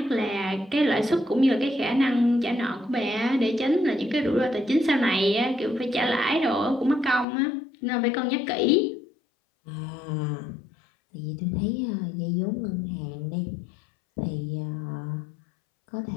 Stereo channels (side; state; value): right; drops out; at 7.2 s